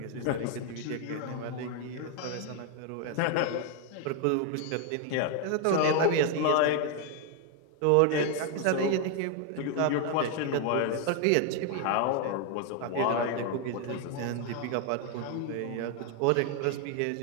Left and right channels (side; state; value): both; different; correlation 0.00